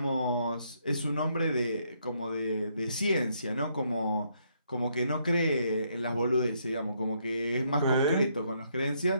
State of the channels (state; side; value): inverted; both; correlation -0.73